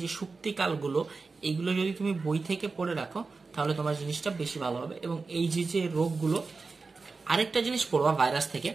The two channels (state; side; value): quieter; left; 4.2 dB